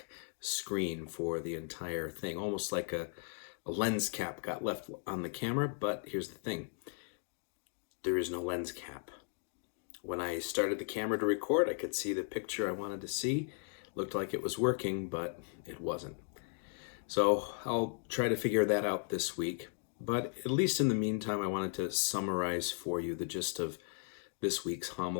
screen for the entire thing, almost like a lens cap got left on the camera. But here's the thing, there is no lens cap. When I started the camera to record, I could see the picture I wanted to see. Looked like it was working, but it wasn't. So I'll try to figure that out this week. But at least in the meantime, I wanted to summarize for you the gist of this week's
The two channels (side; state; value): right; silent; 53 dB below the other